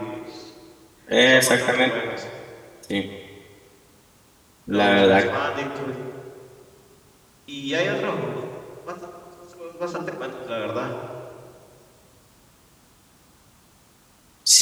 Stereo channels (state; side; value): identical; both; correlation 1.00